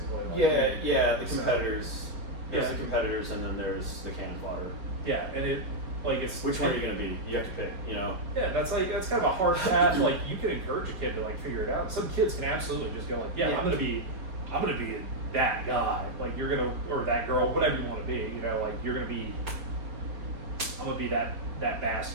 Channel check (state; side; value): late; left; 4.6 ms